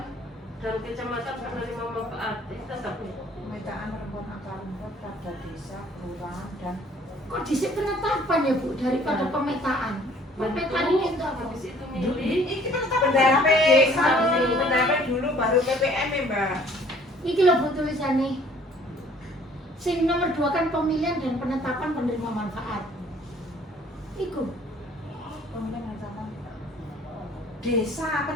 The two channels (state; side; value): normal; both; correlation 0.56